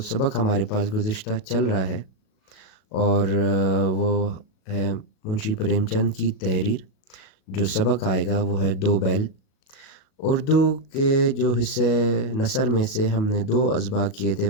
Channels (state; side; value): late; right; 37 ms